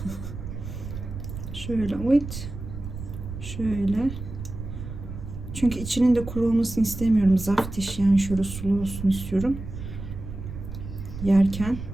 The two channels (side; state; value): right; noise; rumble, 9 dB below the sound